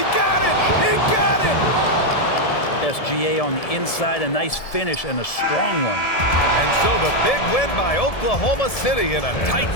got it! He got it! SGA on the inside, a nice finish and a strong one. And so the big win by Oklahoma City in a tight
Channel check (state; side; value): late; right; 1.7 ms